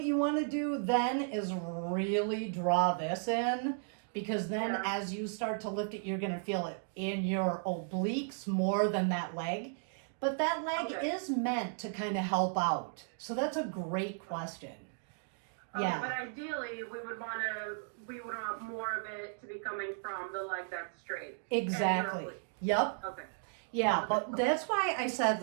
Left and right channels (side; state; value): left; silent; digital silence